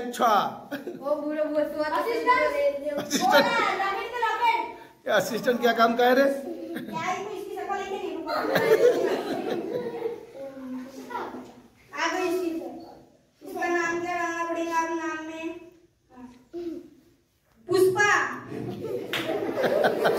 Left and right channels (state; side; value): identical; both; correlation 1.00